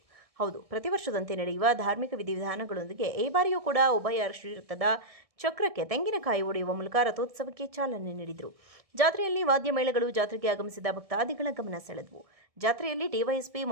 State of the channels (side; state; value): left; late; 1.7 ms